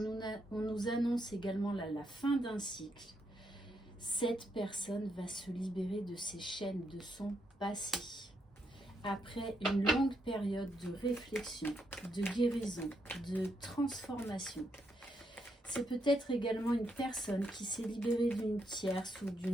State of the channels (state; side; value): normal; both; correlation 0.78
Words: nous annonce également la fin d'un cycle. Cette personne va se libérer de ses chaînes, de son passé. Après une longue période de réflexion, de guérison, de transformation. C'est peut-être également une personne qui s'est libérée d'une tierce ou